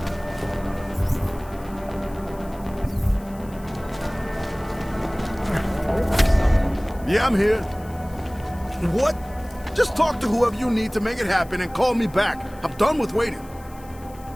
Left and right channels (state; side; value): noise; left; hiss, 24 dB below the sound